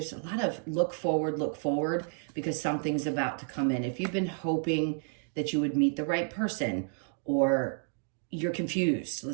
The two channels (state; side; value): silent; left; 57 dB below the other